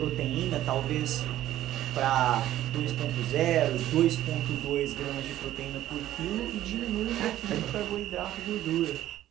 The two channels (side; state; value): left; quieter; 13.3 dB